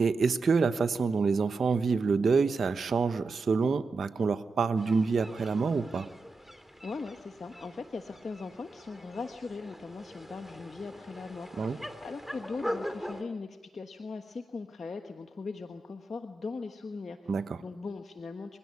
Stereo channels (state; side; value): quieter; left; 3.6 dB